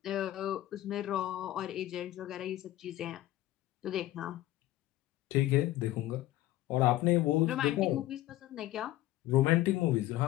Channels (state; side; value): quieter; right; 15.3 dB